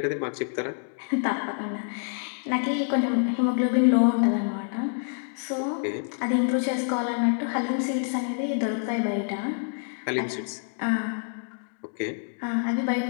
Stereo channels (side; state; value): right; silent; 60 dB below the other